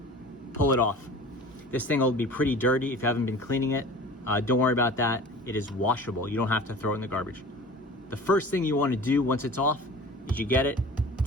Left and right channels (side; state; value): both; normal; correlation 0.40